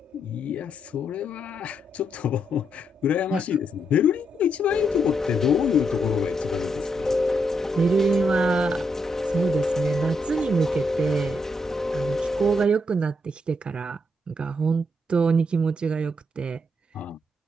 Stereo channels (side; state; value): both; normal; correlation 0.79